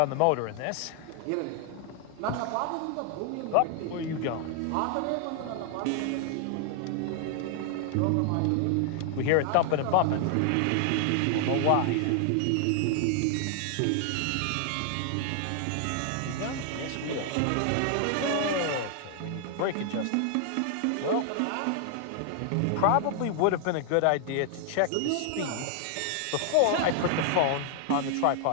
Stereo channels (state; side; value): different; both; correlation 0.00